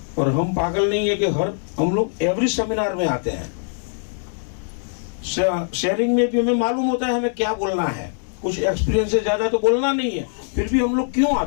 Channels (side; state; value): right; silent; digital silence